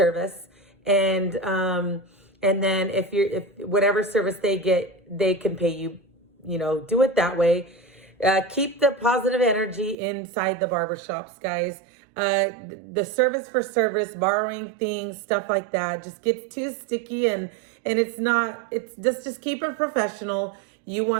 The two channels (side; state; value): left; drops out; at 10.0 s